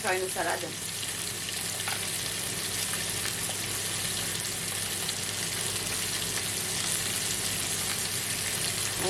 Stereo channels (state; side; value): identical; both; correlation 1.00